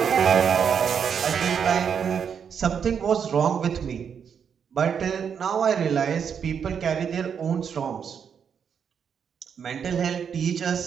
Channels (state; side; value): quieter; left; 7.3 dB